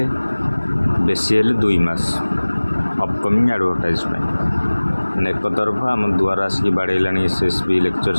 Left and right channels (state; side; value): inverted; both; correlation -1.00